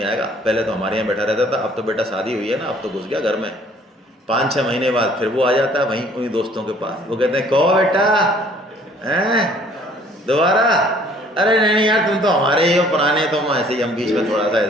आएगा, पहले तो हमारे यहाँ बैठा रहता था, अब तो बेटा शादी हुई है ना, अब तो घुस गया घर में। 5-6 महीने बाद फिर वो आ जाता है वहीं उन्हीं दोस्तों के पास। वो कहते हैं कहो बेटा, हैं दोबारा? अरे नहीं यार, तुम तो हमारे ही हो, पुराने, तुम ऐसे ही, हम बीच में थोड़ा सा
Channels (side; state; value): both; normal; correlation 0.57